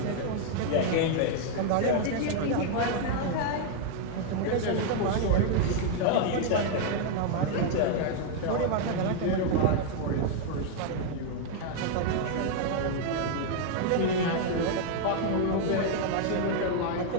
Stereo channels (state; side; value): different; both; correlation 0.00